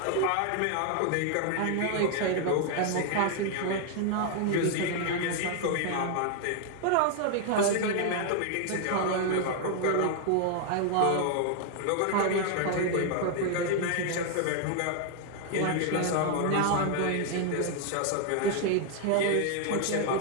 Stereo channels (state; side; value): different; both; correlation 0.00